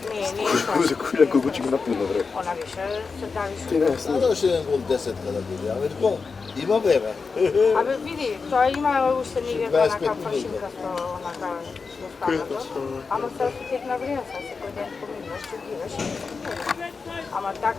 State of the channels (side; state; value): right; quieter; 4.8 dB